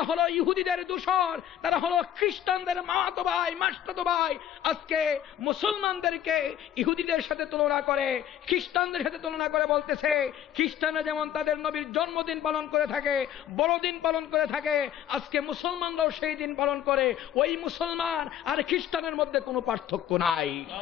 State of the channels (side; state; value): right; quieter; 10.7 dB